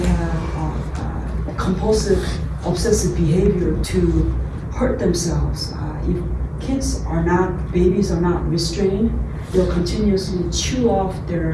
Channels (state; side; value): identical; both; correlation 1.00